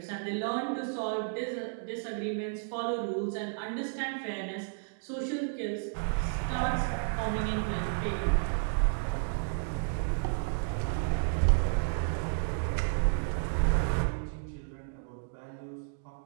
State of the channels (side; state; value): left; silent; digital silence